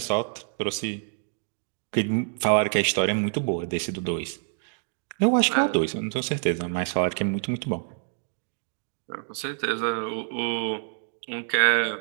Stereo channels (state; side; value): silent; left; 60 dB below the other